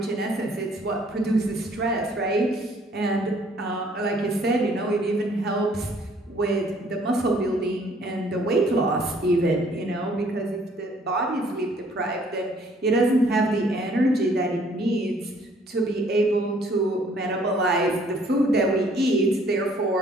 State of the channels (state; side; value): normal; both; correlation 0.60